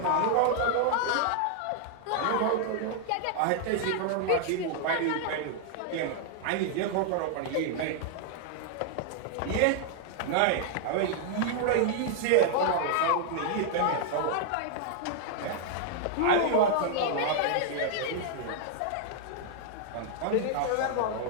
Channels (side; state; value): both; different; correlation 0.00